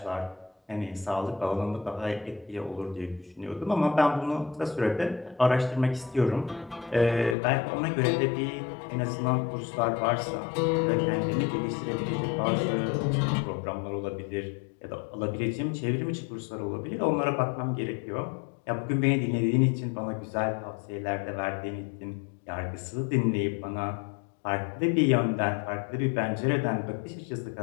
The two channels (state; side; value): drops out; right; at 7.4 s